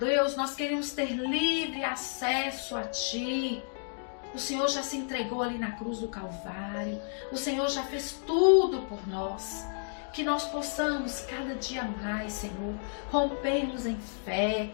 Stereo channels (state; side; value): silent; right; digital silence